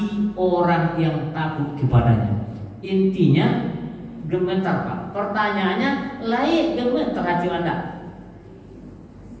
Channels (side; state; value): both; identical; correlation 1.00